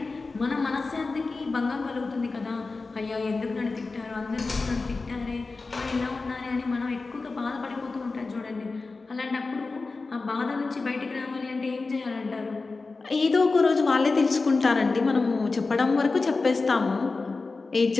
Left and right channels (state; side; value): quieter; right; 3.8 dB